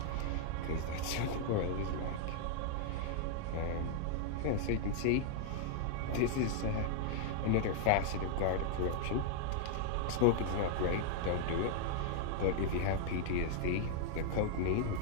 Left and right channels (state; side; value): different; both; correlation 0.00